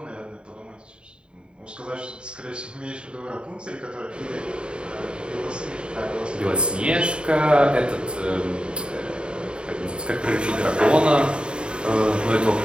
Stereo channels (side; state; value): left; late; 0.052 ms